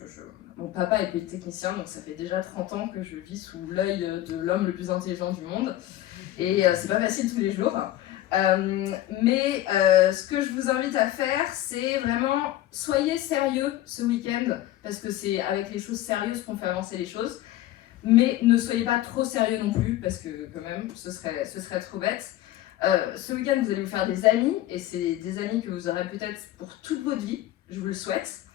mon papa est polytechnicien, donc ça fait déjà 30 ans que je vis sous l'œil de l'homme le plus intelligent du monde, et c'est pas facile tous les jours. Mais ce que je vous invite à faire, c'est vraiment, soyez sérieux ce week-end, parce que c'est avec les choses sérieuses qu'on fait avancer les choses. Mais ne soyez pas trop sérieux non plus, parce que quand même, ce serait trop bête. Ce week-end, vous allez vous faire des amis, et c'est des amis que vous aurez peut-être pour toute votre vie, je vous le souhaite.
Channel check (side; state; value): right; quieter; 14.3 dB